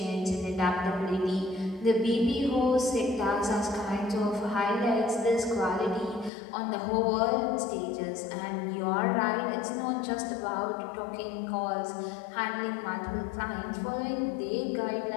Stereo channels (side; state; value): right; drops out; at 6.3 s